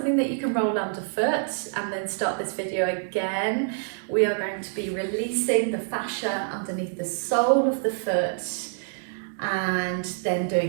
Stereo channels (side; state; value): left; silent; 60 dB below the other